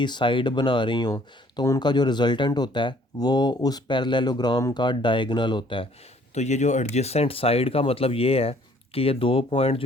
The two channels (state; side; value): normal; both; correlation 0.60